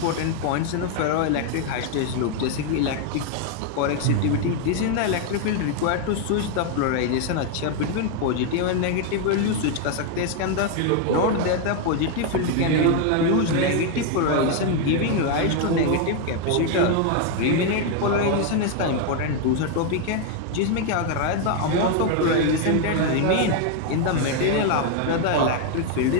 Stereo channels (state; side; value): different; both; correlation 0.01